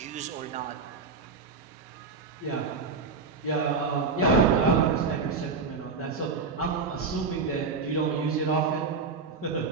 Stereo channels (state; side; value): quieter; left; 4.6 dB